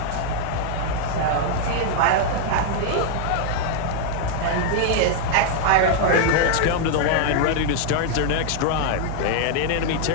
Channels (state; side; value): different; both; correlation 0.00